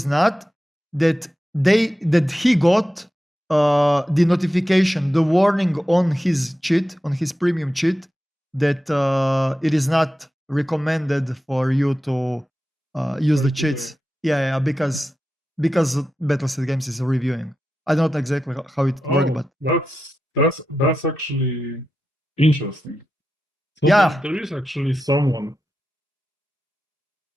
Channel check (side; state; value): both; normal; correlation 0.91